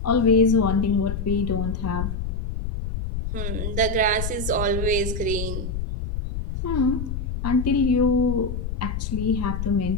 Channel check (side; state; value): left; noise; rumble, 4 dB below the sound